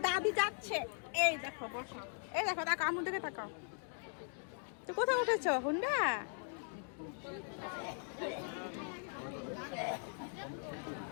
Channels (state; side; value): silent; right; 51 dB below the other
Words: দাদি যাচ্ছে। এই দেখো বসো, এই দেখো তাকাও, আমার দিকে তাকাও। তো কোথায় উঠেছো হুন্ডা?